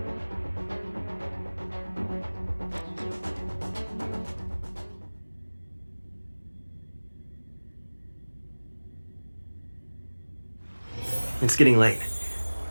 It's getting late.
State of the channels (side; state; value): both; inverted; correlation -1.00